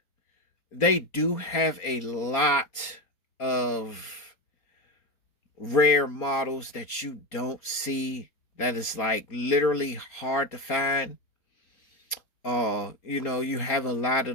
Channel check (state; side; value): late; right; 4.3 ms